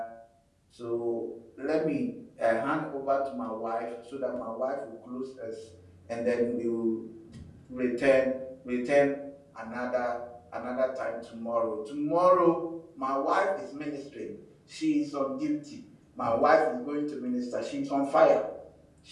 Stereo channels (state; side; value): identical; both; correlation 1.00